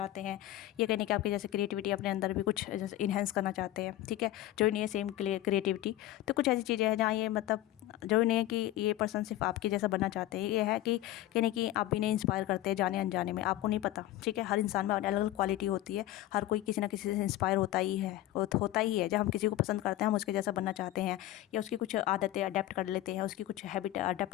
हैं, ये कहने कि आपके जैसे क्रिएटिविटी अपने अंदर भी कुछ जैसे इन्हेंस करना चाहते हैं, ठीक है। जो नहीं है सेम क्रिएटिविटी, तो कुछ ऐसी चीज़ें हैं जहाँ ये मतलब जो नहीं है कि ये पर्सन सिर्फ आपके जैसा बनना चाहते हैं, ये है कि कहने कि आप भी नहीं इंस्पायर करते हैं जाने अनजाने में, आपको नहीं पता, ठीक है। हर इंसान में अलग अलग क्वालिटी होती है, हर कोई किसी ना किसी से इंस्पायर होता ही है। जब हम किसी को पसंद करते हैं हम उसके जैसा बनना चाहते हैं, या उसकी कुछ आदतें अडेप्ट कर लेते हैं, उसकी कुछ हैबिट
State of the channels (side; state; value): right; quieter; 14.9 dB